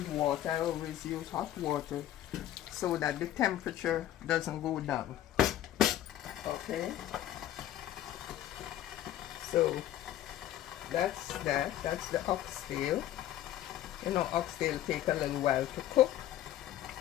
water. I always use hot water so that the temperature doesn't go down. Okay, so that's the oxtail. You know, oxtail take a little while to cook,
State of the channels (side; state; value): right; quieter; 12.7 dB